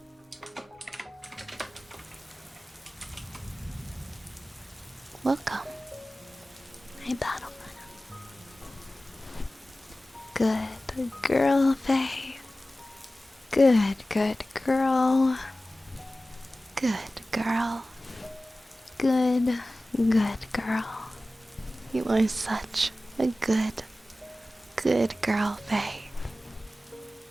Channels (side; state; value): both; normal; correlation 0.96